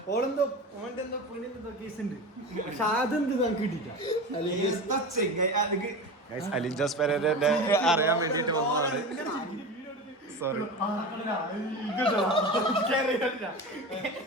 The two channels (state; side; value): normal; both; correlation 0.28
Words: ഓളെന്തോ ഓന്റെ എന്തോ പെണ്ണിന്റെ കേസ് ഉണ്ട്. പക്ഷെ അതെന്ത് നമുക്ക് കിട്ടിയില്ല. അലിൻജോസ് പെരേരന്റെ അറിയാൻ വേണ്ടിട്ട് വന്നതാണ്. സോറി